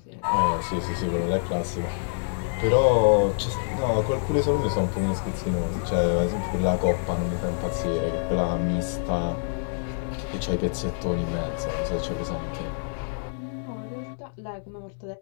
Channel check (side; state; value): right; silent; digital silence